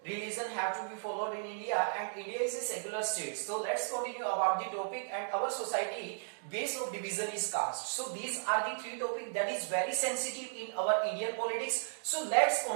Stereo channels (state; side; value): silent; left; digital silence